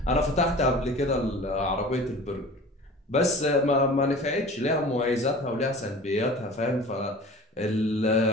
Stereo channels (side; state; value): both; normal; correlation 0.40